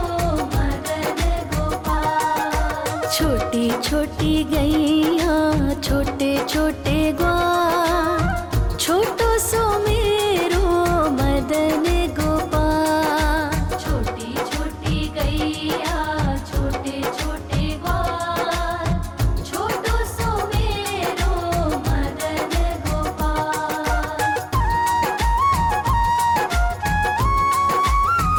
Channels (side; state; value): both; identical; correlation 1.00